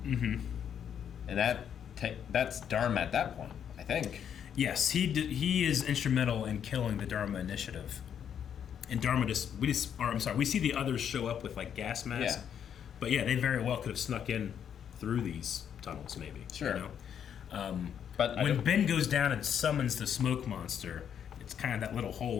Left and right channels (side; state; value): right; quieter; 8.6 dB